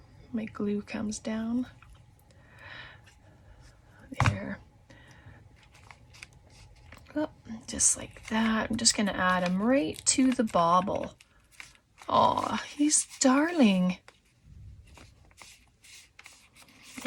My glue comes down. There. Oh, just like that. I'm just gonna add him right to the bauble. Aw, he's darling.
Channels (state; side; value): identical; both; correlation 1.00